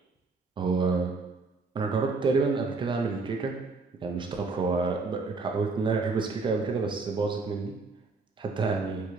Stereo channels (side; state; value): left; quieter; 4.0 dB